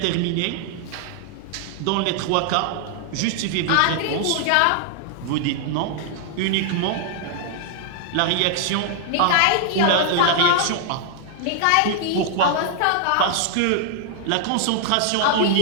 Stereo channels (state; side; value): different; both; correlation -0.01